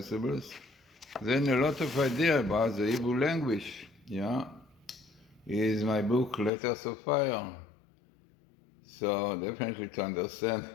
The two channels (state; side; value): drops out; right; at 6.5 s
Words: Then a lot of ideas about the Hebrew language, is my book, Letters of Fire. So definitely to understand